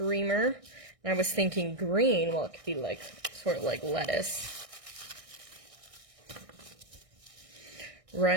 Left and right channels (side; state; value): left; late; 1.6 ms